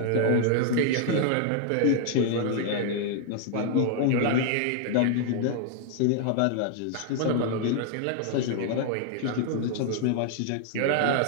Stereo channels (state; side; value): different; both; correlation 0.00